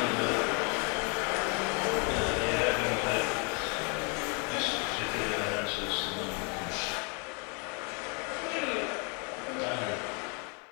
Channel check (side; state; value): right; quieter; 34.3 dB